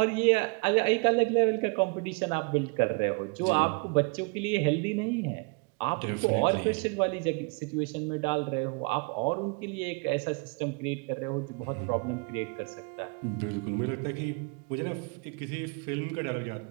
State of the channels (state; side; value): quieter; left; 31.6 dB